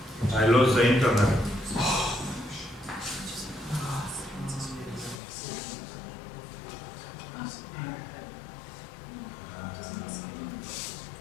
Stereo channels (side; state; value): right; drops out; at 5.2 s